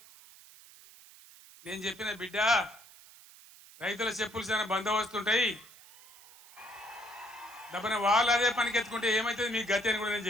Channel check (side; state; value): right; noise; hiss, 22 dB below the sound